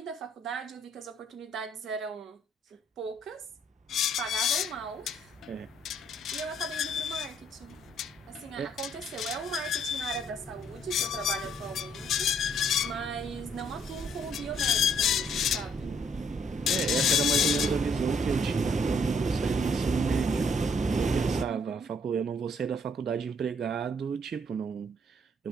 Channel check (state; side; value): normal; both; correlation 0.66